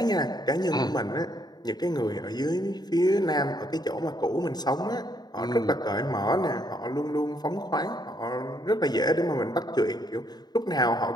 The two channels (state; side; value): late; right; 0.20 ms